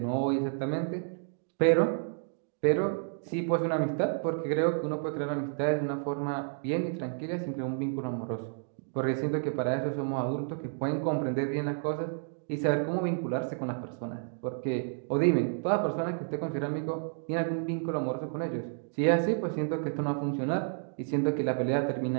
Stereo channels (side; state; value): left; silent; digital silence